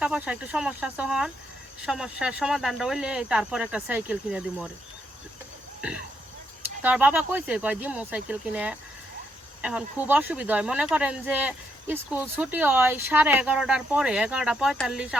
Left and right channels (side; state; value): both; normal; correlation 0.77